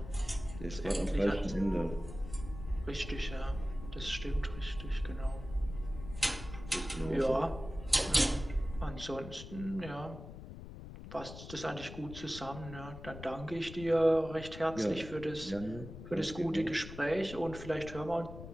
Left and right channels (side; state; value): left; noise; rumble, 12 dB below the sound